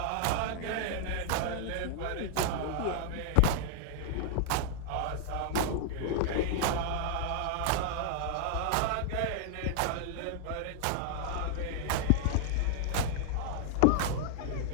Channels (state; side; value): different; both; correlation 0.00